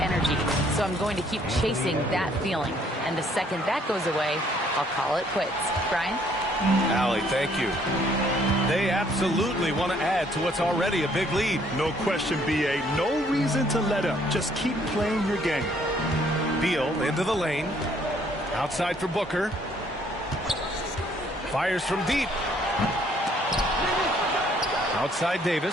So I'm going to keep chasing that feeling. And the second that goes away, I'll call it quits. Brian? Allie, thank you. They absolutely want to add to what's already a big lead. No question, B.A. No reason to let up. Just keep playing your game. Beal into the lane. Outside for Booker. Fires from deep. Outside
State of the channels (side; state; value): both; normal; correlation 0.64